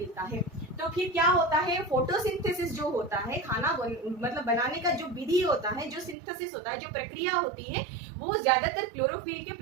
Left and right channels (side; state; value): left; drops out; at 6.2 s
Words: है। तो फिर क्या होता है, फोटोसिंथेसिस जो होता है, खाना मतलब बनाने का जो विधि होता है, जो सिंथेसिस होता है, जो प्रक्रिया होती है, वो ज्यादातर क्लोरोफिल के